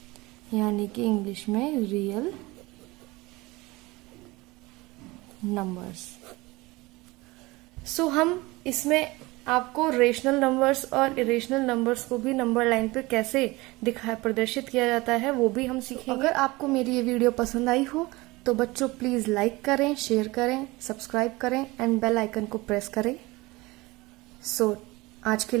यानी कि इंग्लिश में रियल नंबर्स। सो हम इसमें आपको रेशनल नंबर्स और इरेशनल नंबर्स को भी नंबर लाइन पर कैसे प्रदर्शित किया जाता है वो भी हम सीखेंगे। अगर आपको मेरी ये वीडियो पसंद आई हो तो बच्चों प्लीज लाइक करें, शेयर करें, सब्सक्राइब करें एंड बेल आइकन को प्रेस करें। सो आज के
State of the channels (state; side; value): quieter; left; 22.0 dB